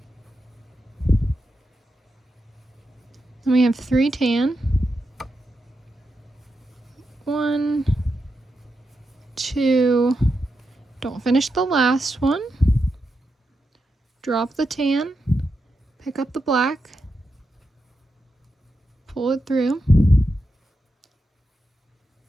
Then we have 3 tan. 1, 2, don't finish the last one. Drop the tan, pick up the black, pull it through.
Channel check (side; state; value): both; normal; correlation 0.87